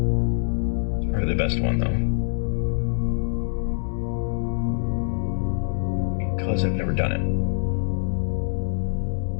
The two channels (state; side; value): silent; right; 62 dB below the other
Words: It's probably the best one though, because I've never done it.